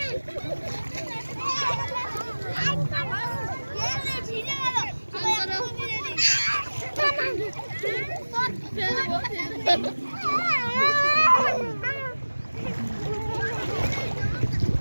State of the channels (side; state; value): both; inverted; correlation -1.00